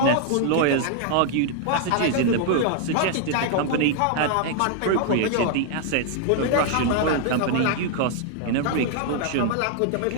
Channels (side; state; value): both; different; correlation 0.00